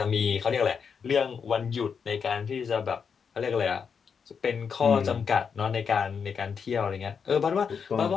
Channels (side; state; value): right; quieter; 6.4 dB